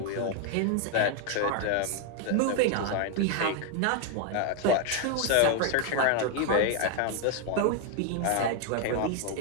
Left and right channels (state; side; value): different; both; correlation 0.01